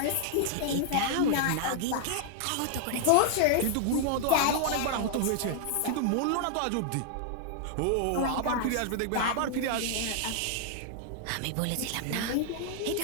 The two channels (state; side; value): different; both; correlation -0.01